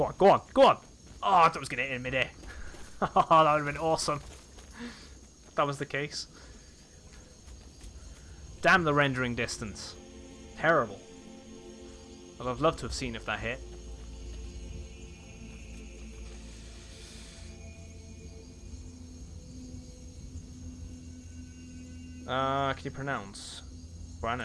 on, go on, go on! Oh, I thought I was going to hit in midair. Oh, that would have been awesome. If that was the case. Damn the rendering distance. Terrible. I'd have loved to have seen if that hit. Can you pronounce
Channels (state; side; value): identical; both; correlation 1.00